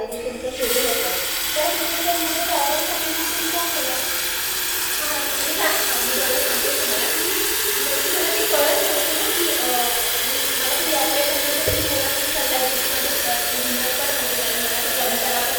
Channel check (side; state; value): both; identical; correlation 1.00